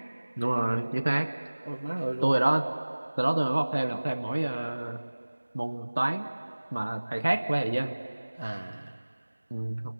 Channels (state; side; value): inverted; both; correlation -1.00